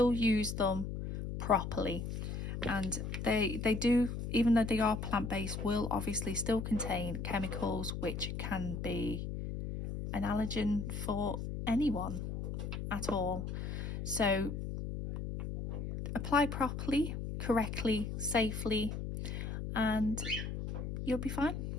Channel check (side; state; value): left; noise; hum, 4 dB below the sound